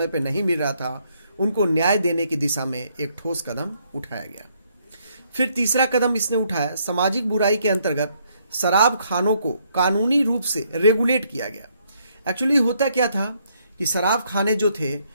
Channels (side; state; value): both; inverted; correlation -0.71